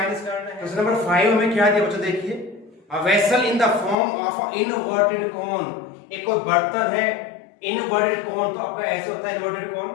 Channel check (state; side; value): drops out; right; at 4.0 s